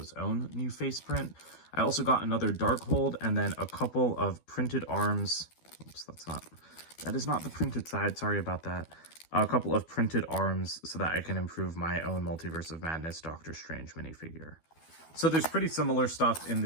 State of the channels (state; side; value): late; right; 12 ms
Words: own new face print. I also got another Darkhold and then a couple of printed arms. Oops, that is not the printed side. Sorry about that. A couple of printed arms so that I can improve my own Multiverse of Madness Doctor Strange minifigure. So there's pretty similar stuff in